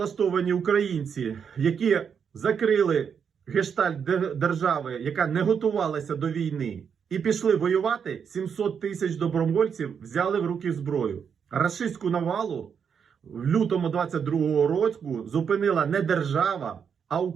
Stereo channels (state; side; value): quieter; left; 7.1 dB